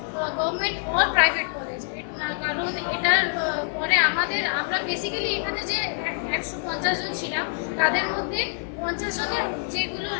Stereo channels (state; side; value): silent; right; digital silence